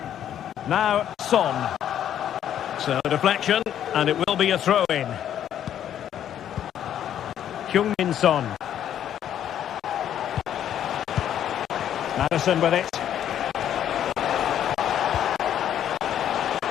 Now Son. So deflection, and it will be a throw-in. Heung-min Son. Maddison with it.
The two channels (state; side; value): quieter; right; 10.3 dB